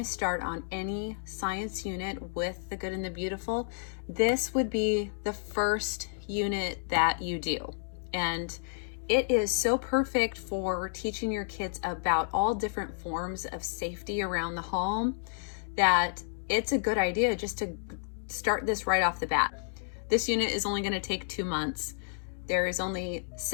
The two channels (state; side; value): silent; right; digital silence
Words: start on any science unit with The Good and the Beautiful, this would be the first unit that you do. And it is so perfect for teaching your kids about all different forms of safety around the home that it's a good idea just to start this right off the bat. This unit is only going to take 2 months. There is only